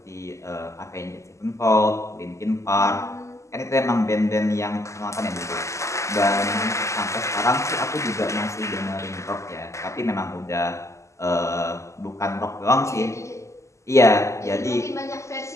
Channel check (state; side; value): late; right; 0.14 ms